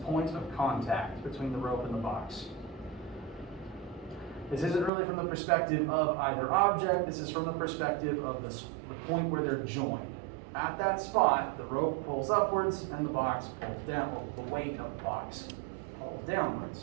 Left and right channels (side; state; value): left; drops out; at 4.9 s